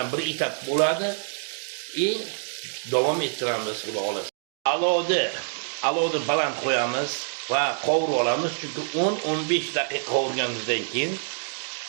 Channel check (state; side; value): silent; left; digital silence